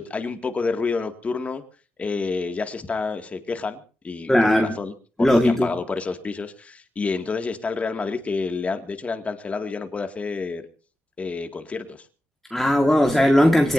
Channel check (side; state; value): both; normal; correlation 0.92